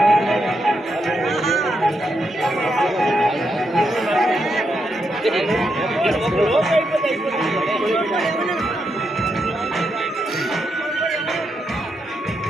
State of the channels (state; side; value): normal; both; correlation 0.82